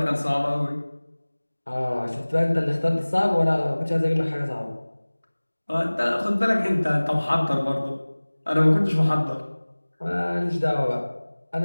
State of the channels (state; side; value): inverted; both; correlation -1.00